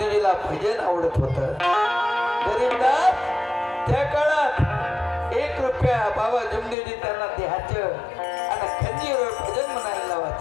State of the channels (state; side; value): drops out; right; at 6.8 s